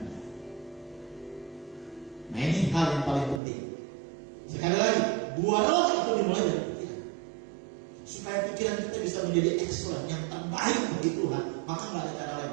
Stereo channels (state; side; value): drops out; left; at 3.4 s